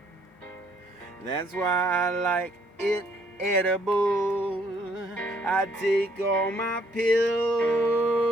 That's why I like it edible. I take all my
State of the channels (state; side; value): normal; both; correlation 0.66